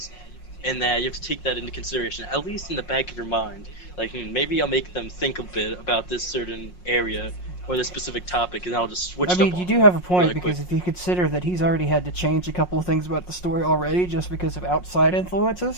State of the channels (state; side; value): late; right; 5.5 ms